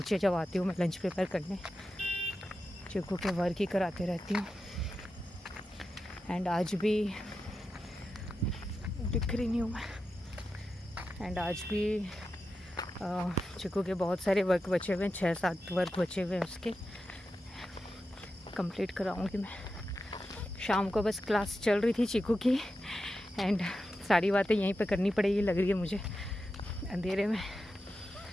जब आती हूँ मैं लंच प्रिपेयर करने, चिकू के वर्क ही कराते रहती हूँ। एंड आज भी दिख रही नहीं हूँ मैं। एंड आज भी चिकू के बहुत सारे वर्क बचे हुए हैं, 6-7 वर्क बचे हुए हैं, उसके कंप्लीट कराऊंगी मैं। शाम को बस क्लास चल रही थी चिकू की एंड सारी बातें यहीं पे करनी पड़ेगी लग रही है मुझे अंधेरे में।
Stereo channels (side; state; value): both; normal; correlation 0.90